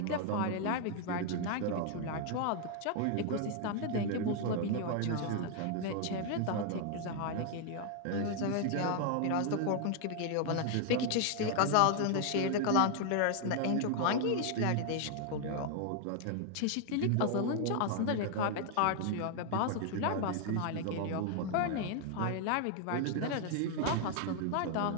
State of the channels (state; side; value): different; both; correlation 0.00